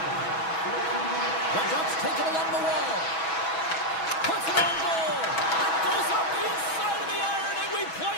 The Ducks take it along the wall. Puts it on goal. It goes up the inside of the iron, and we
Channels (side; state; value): right; late; 6.2 ms